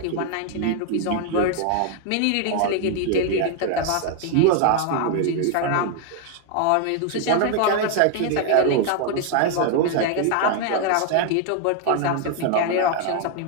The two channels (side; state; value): both; different; correlation 0.00